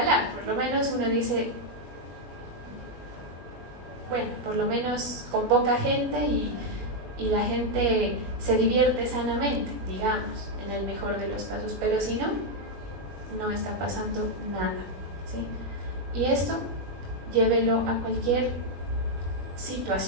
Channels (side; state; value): left; late; 21 ms